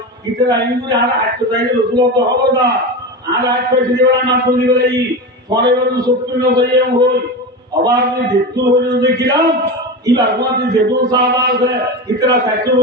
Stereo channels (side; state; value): both; normal; correlation 0.23